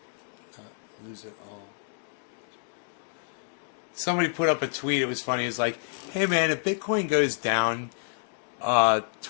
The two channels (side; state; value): right; silent; digital silence